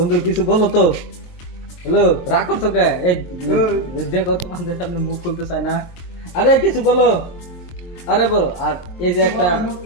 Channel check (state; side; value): late; right; 23 ms